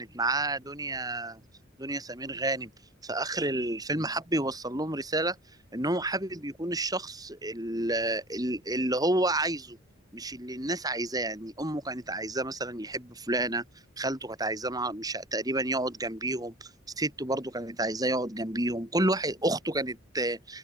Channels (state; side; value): normal; both; correlation 0.38